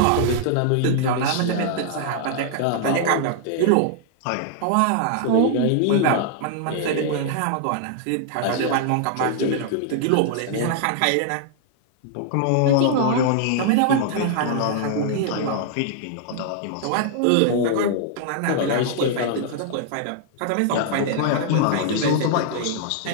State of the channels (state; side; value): different; both; correlation -0.01